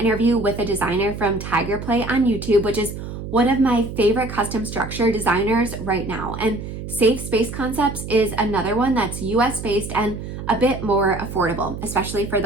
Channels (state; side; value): noise; right; hum, 8 dB below the sound